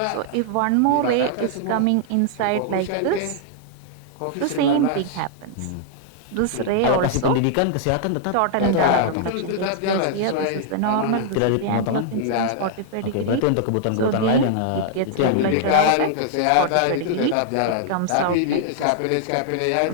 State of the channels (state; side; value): different; both; correlation -0.01